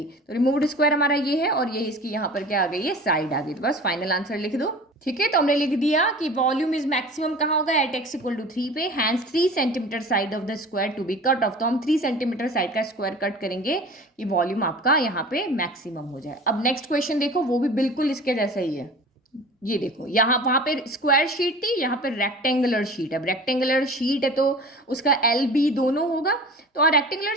तो रिमूव्ड स्क्वायर हमारा ये है और ये इसकी यहाँ पर क्या आ गई है, साइड आ गई, तो बस फाइनल आंसर लिख दो। ठीक है, तो हमने लिख दिया कि वॉल्यूम इज मैक्सिमम कहाँ होगा, एट एक्स इक्वल टू 3 पे, hence 3 centimetre side of the square to be cut off, तो हम 3 सेंटीमीटर साइड का स्क्वायर कट करेंगे कि वॉल्यूम आपका यहाँ पे मैक्सिमम हो जाए। अब नेक्स्ट क्वेश्चन देखो, वो भी बिल्कुल इसके जैसा ही है। ये देखो, यहाँ वहां पे स्क्वायर शीट थी, यहाँ पे रेक्टेंगुलर शीट है। अब रेक्टेंगुलर शीट है तो उसका एल बी दोनों होगा, तो rectangular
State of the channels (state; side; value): normal; both; correlation 0.40